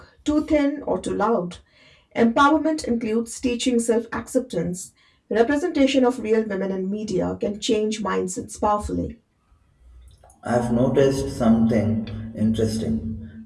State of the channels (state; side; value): identical; both; correlation 1.00